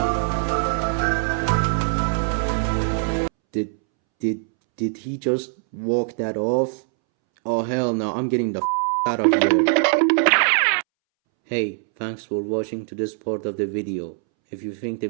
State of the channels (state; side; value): silent; left; 64 dB below the other